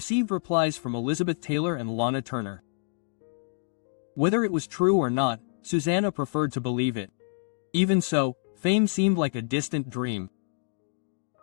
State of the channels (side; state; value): right; silent; digital silence